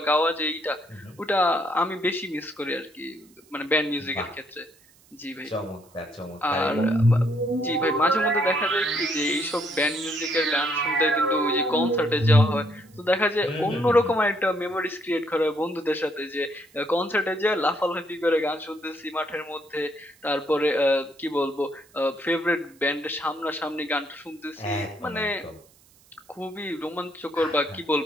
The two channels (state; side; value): noise; right; hiss, 29 dB below the sound